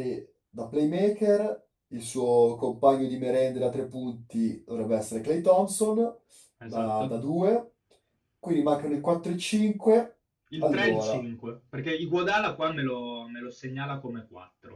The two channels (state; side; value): identical; both; correlation 1.00